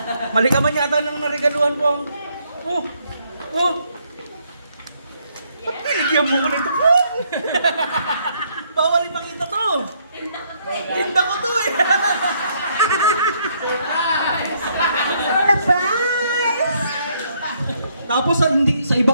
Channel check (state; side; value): inverted; both; correlation -0.71